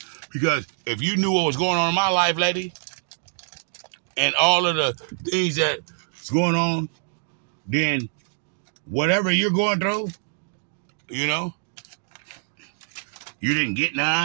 Because if you knew what was going on in my life, lady, and all of the things that's going on, then whatever you're going through, you know, you didn't get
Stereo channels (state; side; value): silent; left; digital silence